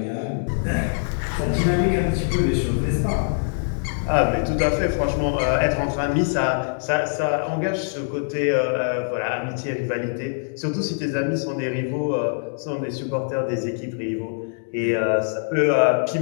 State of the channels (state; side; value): silent; right; digital silence